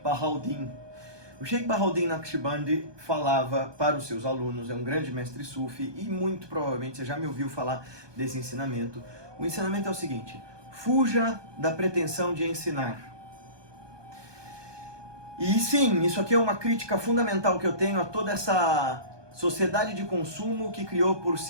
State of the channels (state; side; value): late; left; 1.2 ms